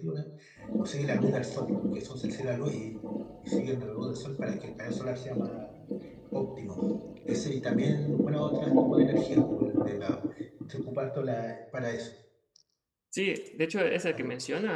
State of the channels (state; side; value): identical; both; correlation 1.00